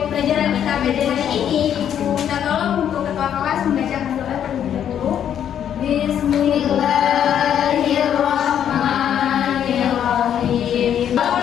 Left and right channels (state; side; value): quieter; right; 9.5 dB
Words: pembelajaran kita pada hari ini, Ibu minta tolong untuk ketua kelas membacakan doa terlebih dahulu. Bismillahirrahmanirrahim.